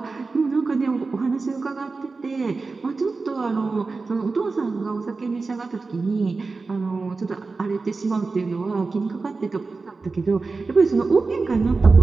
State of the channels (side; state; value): left; quieter; 4.0 dB